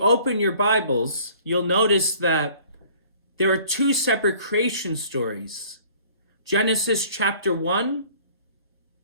your Bibles, you'll notice that there are two separate creation stories. Genesis chapter 1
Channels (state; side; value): inverted; both; correlation -0.53